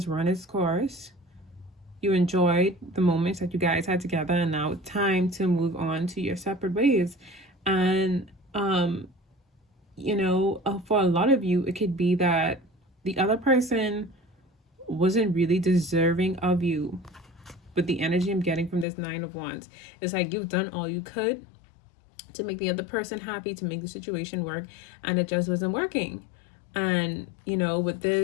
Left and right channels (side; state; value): right; drops out; at 18.9 s